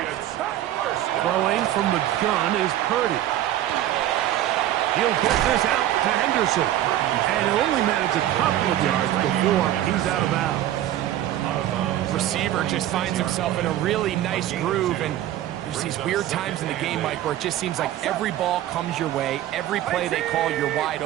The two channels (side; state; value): left; quieter; 12.9 dB